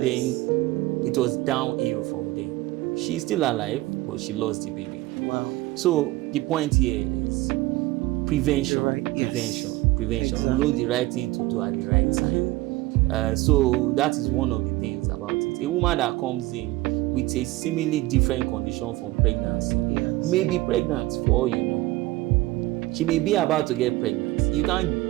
then it was downhill from there. She's still alive, but she lost the baby. Wow. So the point here is prevention. Know the right thing to do at the right time. So that is one of the things about it. A woman that comes in with a seemingly different condition from pregnancy may be pregnant for all you know. She may be about to get pregnant. You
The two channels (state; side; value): quieter; left; 18.9 dB